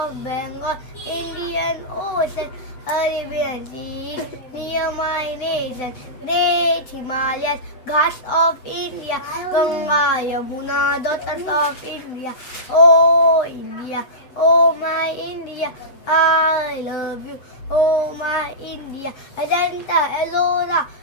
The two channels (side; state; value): right; late; 7.9 ms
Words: Bengal, Indian Ocean, Arabian Sea, near my nation. Great Himalayas, Ghats of India, Ganga, Yamuna, daughters of India. Oh India, oh my India, I love you, oh my India. Ajanta, Ellora,